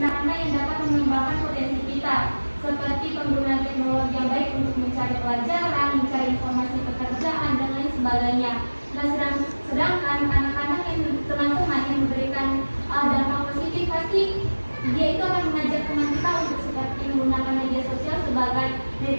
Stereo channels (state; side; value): inverted; both; correlation -1.00